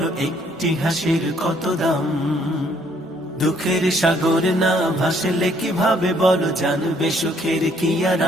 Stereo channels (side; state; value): both; normal; correlation 0.66